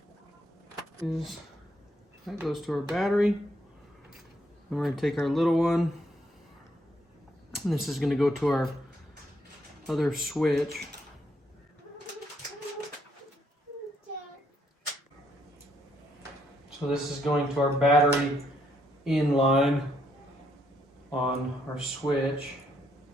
That goes to our battery. And we're going to take our little one, and this is going to go to our other switch. So this is going to our battery in line on our switch.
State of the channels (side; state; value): both; normal; correlation 0.73